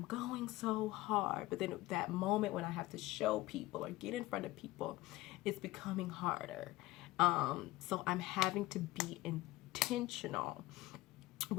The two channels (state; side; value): quieter; right; 18.6 dB